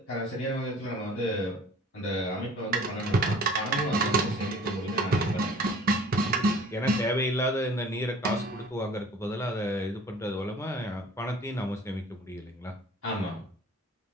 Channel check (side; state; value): both; normal; correlation 0.49